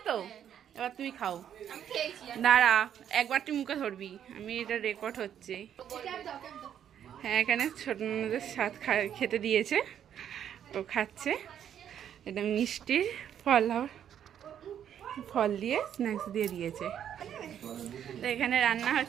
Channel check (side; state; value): left; quieter; 9.5 dB